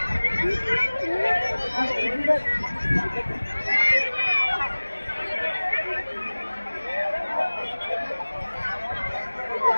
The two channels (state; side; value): inverted; both; correlation -1.00